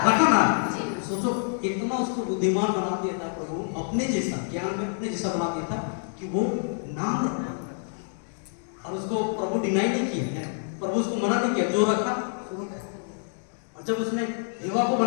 रखा ना। सोचो, इतना उसको बुद्धिमान बना दिया था प्रभु, अपने जैसा ज्ञान में अपने जैसा बना दिया था कि वो नाम रखा। और उसको प्रभु डिनाई नहीं किया, प्रभु उसको मना नहीं किया, जो रखा शुरू कर। और जब उसने हेवा को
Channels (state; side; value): silent; right; digital silence